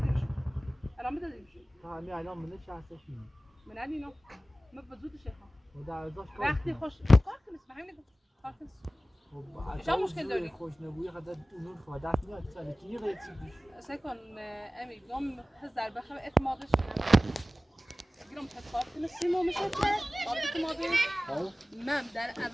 الان بدادیمش همین الان منه شخصش میده من اینو ما بزود شیخا و در ازاش وقتی خوش کار کنیس به همین کار کنیس شما مشکل داری؟ خوش نبوی خدا اونون خدا دست میاد سال کی غیر چی سکن امی گم هزار بخم اعتمادش گیرم تکار کنه سیمو میشه که قابل اعتمادی من در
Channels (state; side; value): normal; both; correlation 0.97